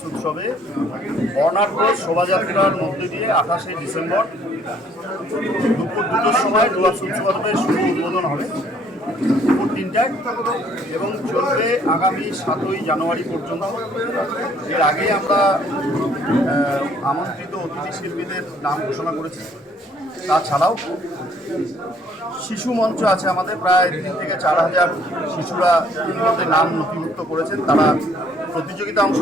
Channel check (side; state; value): both; normal; correlation 0.62